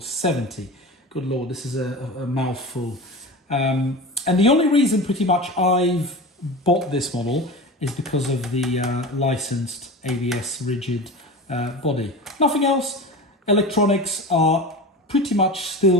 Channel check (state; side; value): normal; both; correlation 0.30